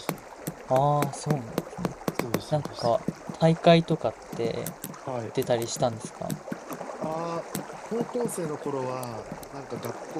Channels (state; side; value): identical; both; correlation 1.00